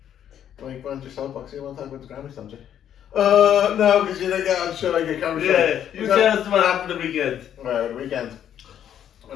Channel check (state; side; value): quieter; right; 9.9 dB